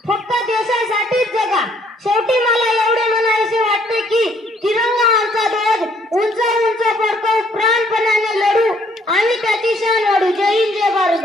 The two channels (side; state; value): both; normal; correlation 0.65